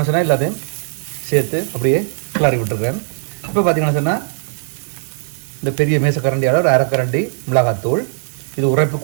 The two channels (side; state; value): left; silent; 67 dB below the other